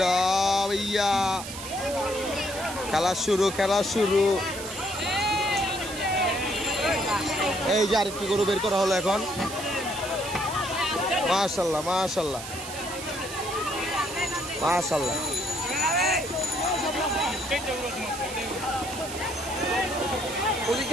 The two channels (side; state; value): right; noise; hiss, 10 dB below the sound